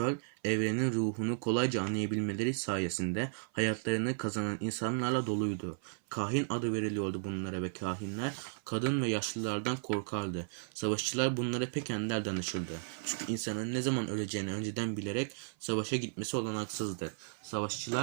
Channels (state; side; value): silent; left; 55 dB below the other